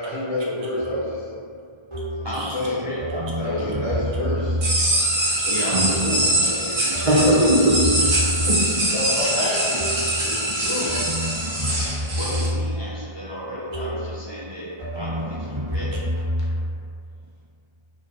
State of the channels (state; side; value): late; left; 1.3 ms